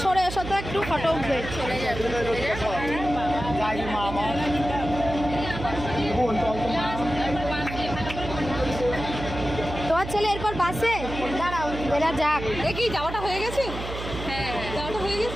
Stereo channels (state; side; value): noise; right; hum, 8 dB below the sound